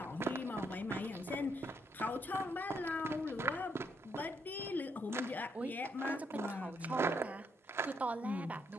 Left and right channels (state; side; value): normal; both; correlation 0.75